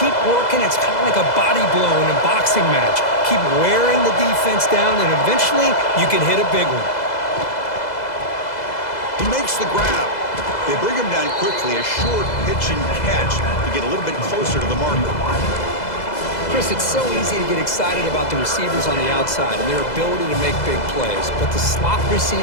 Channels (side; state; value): right; late; 2.0 ms